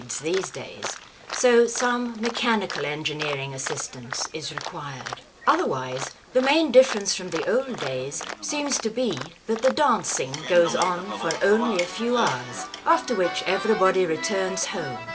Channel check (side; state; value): both; identical; correlation 1.00